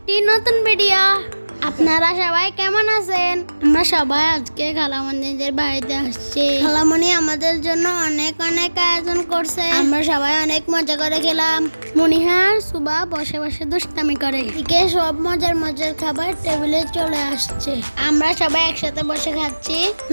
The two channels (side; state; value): both; inverted; correlation -1.00